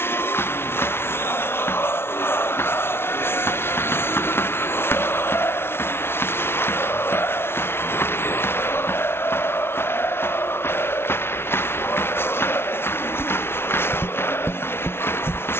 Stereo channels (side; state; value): right; late; 0.12 ms